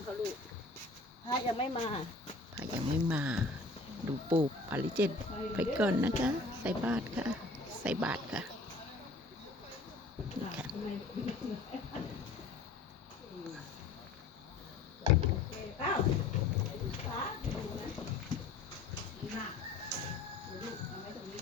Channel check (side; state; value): right; quieter; 3.4 dB